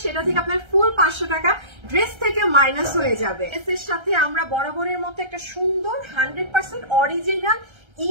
সেটা থেকে আপনার ফুল 500 টাকা ড্রেস থেকে মাইনাস হয়ে যাবে। ড্রেসের সাথে আমরা বরাবরের মতো একটা সুন্দর 100% অরিজিনাল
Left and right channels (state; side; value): late; left; 1.3 ms